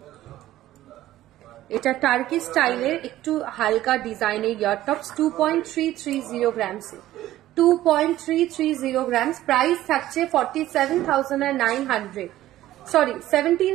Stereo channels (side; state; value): left; quieter; 14.4 dB